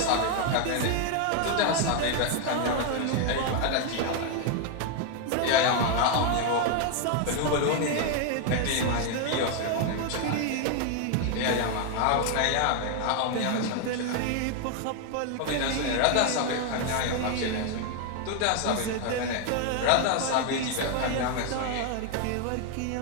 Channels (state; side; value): different; both; correlation 0.01